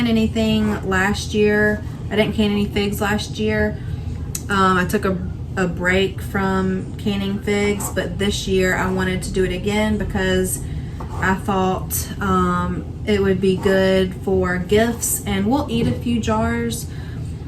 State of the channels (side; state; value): both; identical; correlation 1.00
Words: anything last year. I didn't can any figs last year. I took a break from canning figs, but this year I wanted to do it again because I thought it would be good for gifts, and we'll eat a few jars,